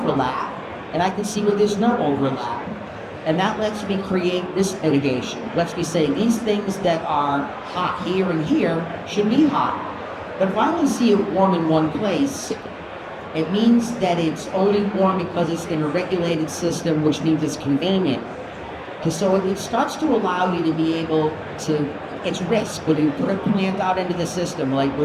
and I can see where there's no overlap. And that lets me create risk mitigation. Lets me say these things that are hot here and here should be hot. But if I only see it warm in one place, it means that it's only warm because it's in a regulated system, which means it's convenient. And so it starts to allow you to be able to, it's risk. When you put a plant out into the system, like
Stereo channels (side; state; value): both; identical; correlation 1.00